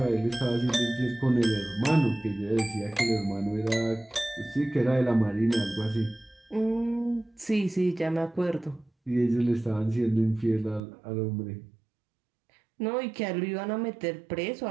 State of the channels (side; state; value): left; drops out; at 10.8 s